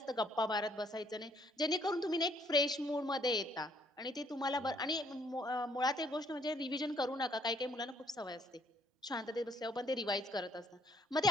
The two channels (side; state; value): both; normal; correlation 0.65